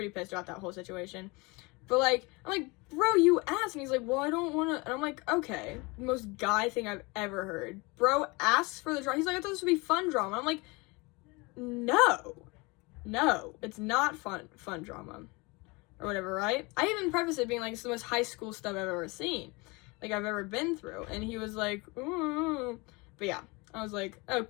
pissed about that whole situation. But like, I'm like, bro, you asked. And he's like, well, I don't want to. And I'm like, okay, most guy thing I've ever heard. Bro asks for the drama. He's like, I thought this would be fun drama. I'm like, no, it's not fun drama or whatever, right? I even prefaced it being like, it's the most high school stuff I've ever seen, like I've ever been through. And he was like, ooh. But yeah, I was like,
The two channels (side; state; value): right; quieter; 26.3 dB